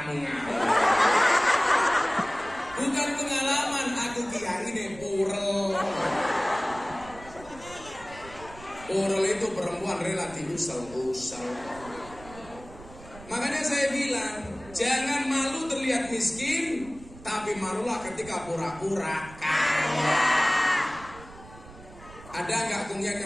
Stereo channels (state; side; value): noise; right; rumble, 18 dB below the sound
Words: ngawur. Bukan pengalaman, aku kiai ini purel. Purel itu perempuan relatif usel-usel. Makanya saya bilang, jangan malu terlihat miskin, tapi malulah ketika pura-pura kaya. Ada nggak kungyak